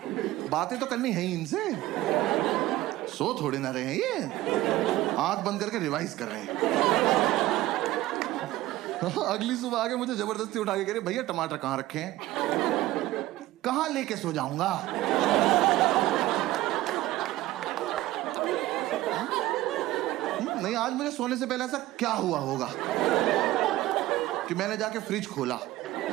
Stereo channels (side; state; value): left; quieter; 16.4 dB